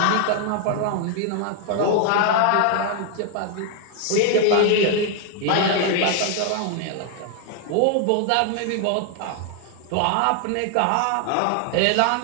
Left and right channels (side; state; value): both; different; correlation 0.00